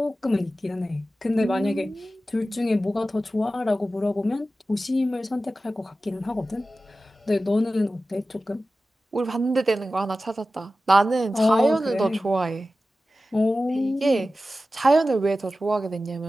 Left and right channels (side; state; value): both; normal; correlation 0.94